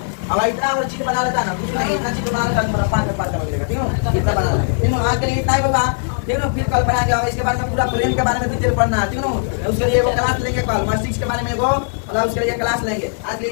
अब इतना और चीज बना लेता ना, कुछ नहीं, इतना चीज बना लेता तुम्हारा 5 में मिलेगा, ठीक है, इतना बना लेते, ठीक है, आज के लिए इतना ही होगा, ठीक है, फिर कल पढ़ाएंगे और इसके बारे में पूरा प्रेम के बारे में डिटेल पढ़ना है, ठीक है, उसके लिए वो क्लास लेंगे कल, मार्क्स 6 के बारे में वो और उसके लिए क्लास लेंगे। आज के लिए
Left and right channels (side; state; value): right; silent; digital silence